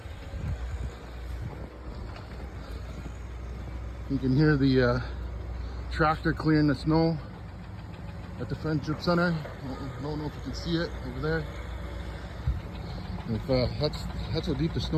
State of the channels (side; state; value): both; identical; correlation 1.00